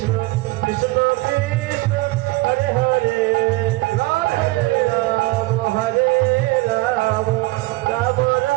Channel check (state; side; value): quieter; left; 21.2 dB